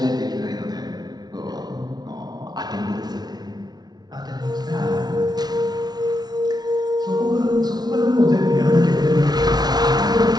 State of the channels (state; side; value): late; left; 0.19 ms